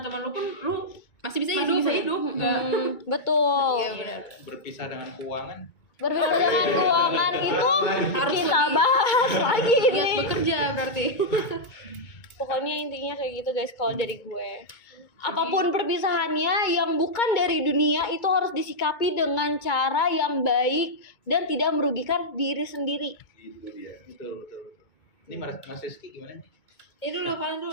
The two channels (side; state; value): right; late; 2.2 ms